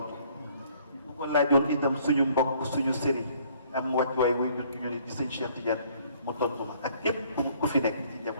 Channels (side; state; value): both; inverted; correlation -0.60